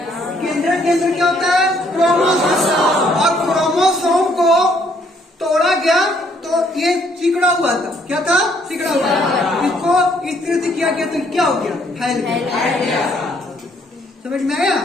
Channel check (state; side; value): normal; both; correlation 0.67